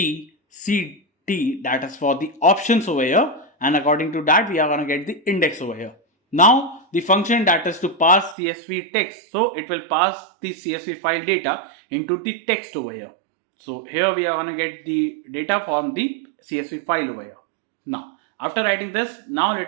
C, D. That is for the options over here. And according to that, we are going to get the index over here. Now, the function that is to pass CSV text. So, it will pass the CSV file data into the text over here. So, here we are going to get the data from the CSV file over here. Now, after writing this, now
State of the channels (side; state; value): left; drops out; at 8.3 s